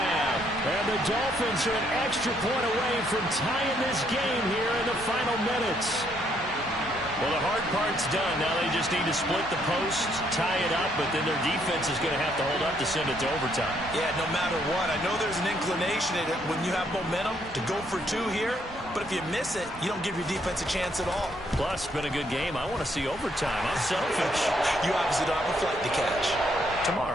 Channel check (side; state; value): both; normal; correlation 0.71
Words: And the Dolphins are an extra point away from tying this game here in the final minutes. Well, the hard part's done. Now they just need to split the posts, tie it up, but then their defense is going to have to hold up to send it to overtime. Yeah, no matter what. I know there's an inclination in it when you have momentum to go for 2 here, but if you miss it, you don't give your defense a chance at all. Plus, it's been a good game. I want to see overtime. I'm selfish. You obviously don't have a flight to catch.